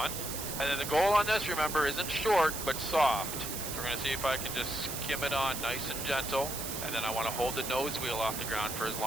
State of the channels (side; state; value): right; noise; hiss, 5 dB below the sound